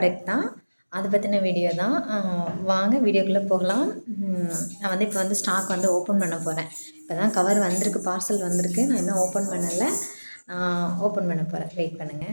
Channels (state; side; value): inverted; both; correlation -1.00